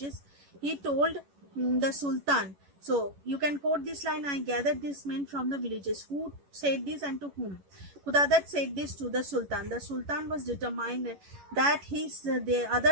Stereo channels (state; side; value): late; left; 11 ms